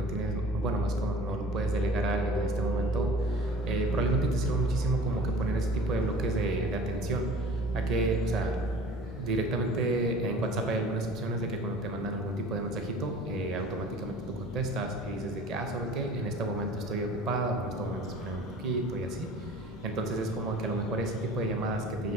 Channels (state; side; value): normal; both; correlation 0.45